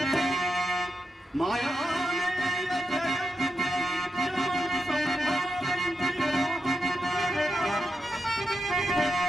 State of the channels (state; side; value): normal; both; correlation 0.87